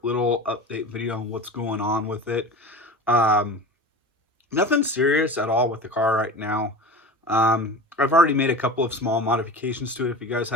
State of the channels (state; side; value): normal; both; correlation 0.33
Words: little update video on what's going on with it. Nothing serious at all with the car right now. I've already made a couple of small modifications to it, if you guys